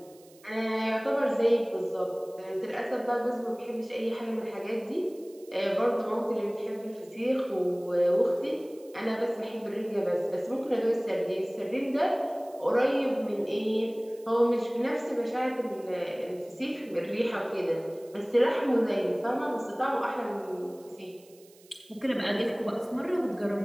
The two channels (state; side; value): noise; right; hiss, 27 dB below the sound